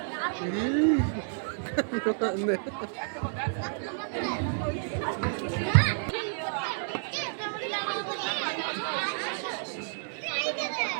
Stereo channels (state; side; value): silent; left; 58 dB below the other